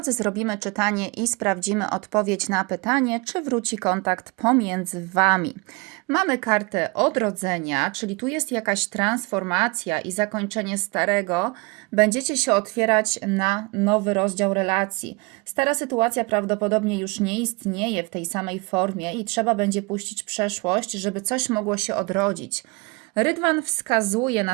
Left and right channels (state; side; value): quieter; left; 27.8 dB